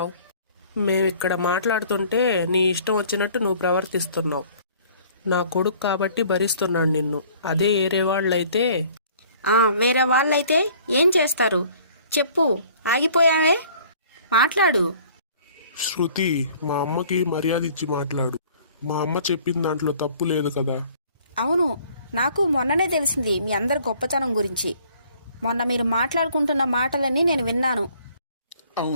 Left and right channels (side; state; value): both; inverted; correlation -0.55